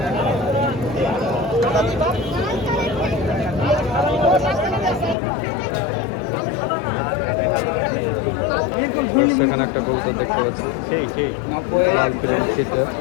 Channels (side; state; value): right; drops out; at 5.2 s